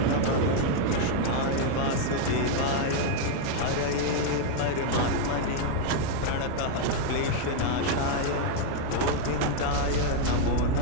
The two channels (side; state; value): both; different; correlation 0.00